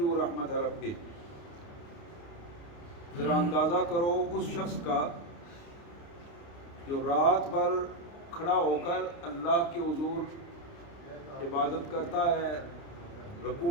رحمت ربہ۔ ذرا اندازہ کرو اس شخص کا جو رات بھر کھڑا ہو کر اللہ کے حضور عبادت کرتا ہے،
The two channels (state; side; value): late; right; 29 ms